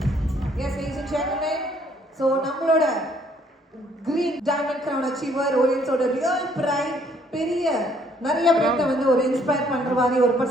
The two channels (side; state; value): both; normal; correlation 0.65